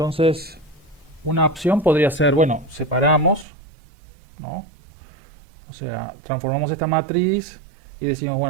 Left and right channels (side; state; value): left; drops out; at 3.5 s